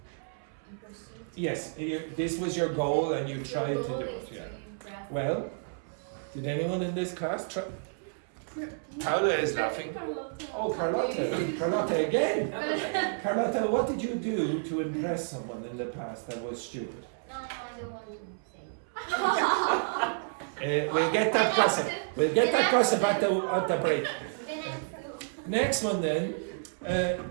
In pursuit? Yes, this was your goal and you Your tried to goal do is it. to Yeah. impress. Well, did anyone in this class try? Paula is laughing. Oh, Carlotta. Carlotta again. Carlotta, what did you do to impress someone in the past that was stupid? No, I don't want to say. We'll get that gossip. We'll get that gossip at the break. Then I do. Next one then.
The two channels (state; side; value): silent; left; 57 dB below the other